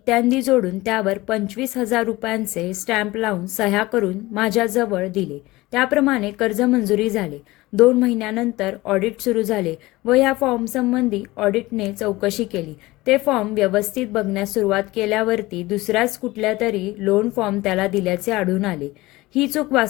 जोडून त्यावर 25,000 रुपयांचे स्टॅम्प लावून सह्या करून माझ्याजवळ दिले. त्याप्रमाणे कर्ज मंजुरी झाले. 2 महिन्यानंतर ऑडिट सुरू झाले व या फॉर्मसंबंधी ऑडिटने चौकशी केली. ते फॉर्म व्यवस्थित बघण्यास सुरुवात केल्यावरती दुसऱ्याच कुठल्या तरी लोन फॉर्म त्याला दिल्याचे आढळून आले. ही चूक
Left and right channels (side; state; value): right; quieter; 19.8 dB